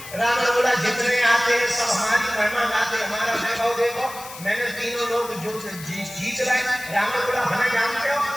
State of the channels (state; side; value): noise; left; hiss, 14 dB below the sound